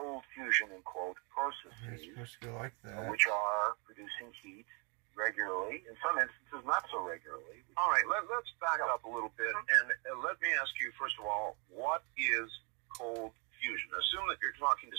fusion, in quote, processes which are producing heat regularly, in some instances not so regularly. All right, let's back up a little bit, and let me ask you, first of all, what is cold fusion? Assume that you're talking to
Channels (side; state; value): left; quieter; 34.1 dB